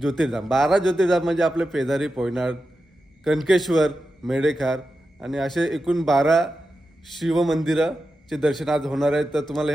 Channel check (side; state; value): both; normal; correlation 0.90